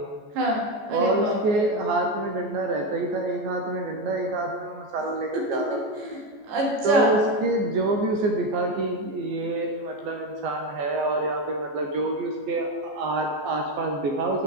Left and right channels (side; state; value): left; late; 14 ms